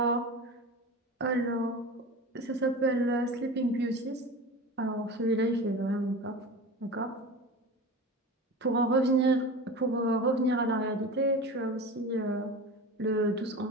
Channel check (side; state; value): both; normal; correlation 0.32